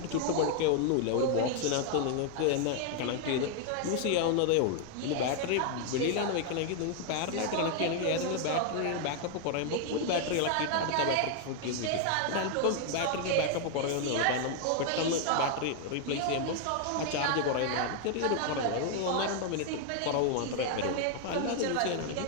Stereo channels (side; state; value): both; different; correlation 0.00